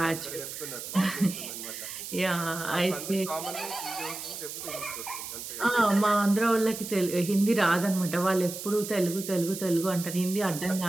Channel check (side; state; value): right; noise; hiss, 8 dB below the sound